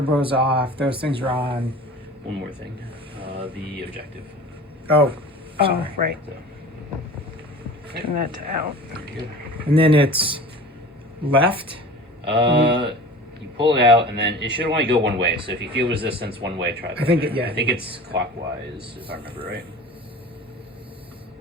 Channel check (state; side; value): normal; both; correlation 0.39